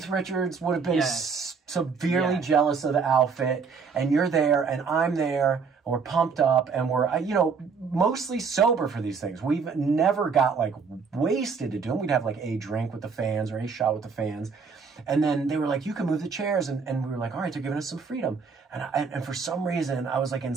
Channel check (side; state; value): left; quieter; 5.4 dB